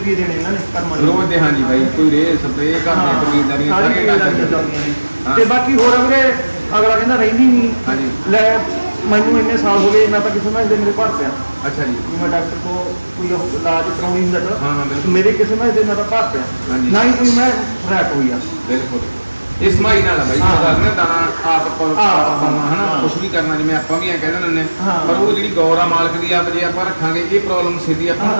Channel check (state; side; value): inverted; both; correlation -1.00